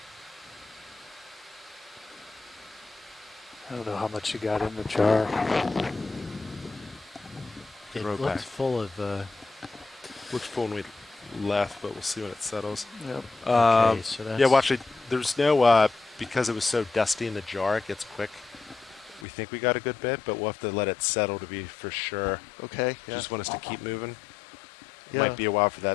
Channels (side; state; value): right; drops out; at 19.2 s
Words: I don't know how much you got in the jar. It Throw looks back. full of. Looks full when we left, but we'll see when it settles. Yep. Okay, so that's yeah, well, actually, there's no, because it was so dusty in the jar, it gets quick. We think we got a good bit, but we'll have to let it settle to be for sure. Okay, You yeah. just want us to keep moving? Yeah. Might be a while for